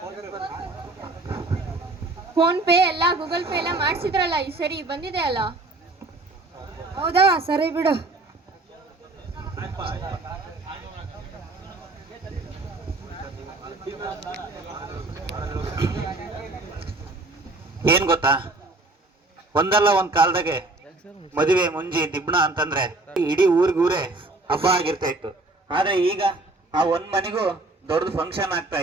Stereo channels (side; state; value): left; quieter; 3.0 dB